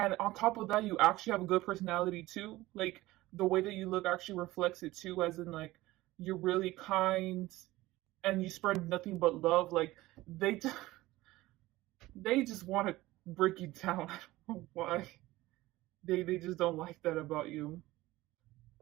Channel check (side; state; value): left; quieter; 18.0 dB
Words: on top of that, you actually have a good personality too. Like the way that you look actually reflects it too, as in like you're really kind and you spread nothing but love. Like they they just want to break you down. I don't know why. They just don't like that about you.